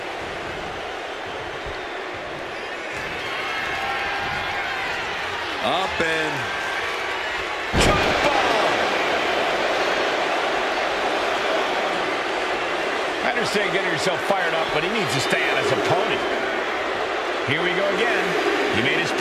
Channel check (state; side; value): identical; both; correlation 1.00